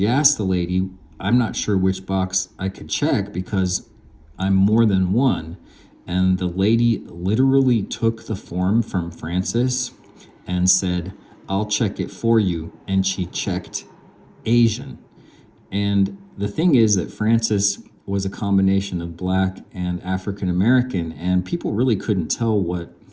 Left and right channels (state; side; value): identical; both; correlation 1.00